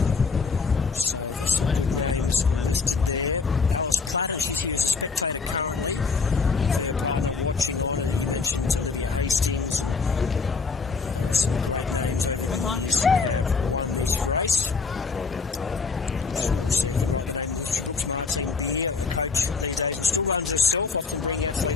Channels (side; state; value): right; quieter; 4.7 dB